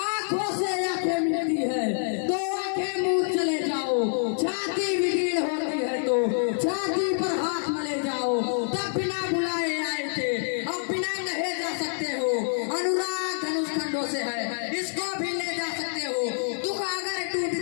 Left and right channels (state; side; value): silent; right; digital silence